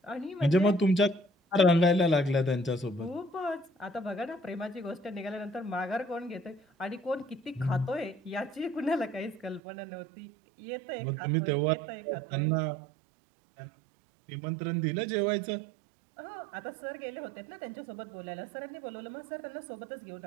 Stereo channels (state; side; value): drops out; left; at 9.6 s